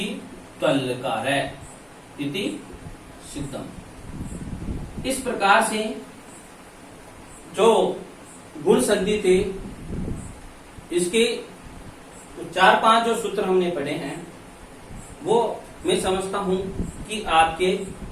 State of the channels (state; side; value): identical; both; correlation 1.00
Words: त्वलकार इति सिद्धम। इस प्रकार से जो गुण संधि थे, इसके 4-5 जो सूत्र हमने पढ़े हैं, वो मैं समझता हूं कि आपके